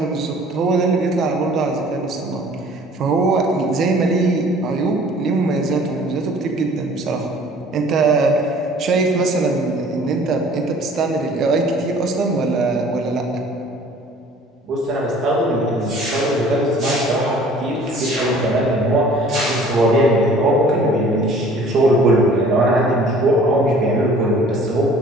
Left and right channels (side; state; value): both; normal; correlation 0.51